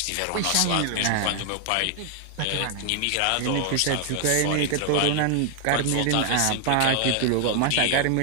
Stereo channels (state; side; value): different; both; correlation 0.00